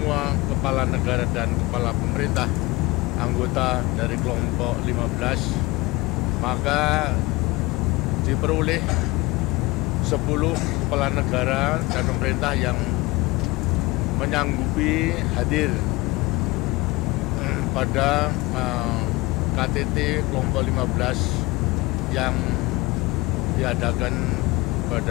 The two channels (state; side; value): quieter; right; 22.6 dB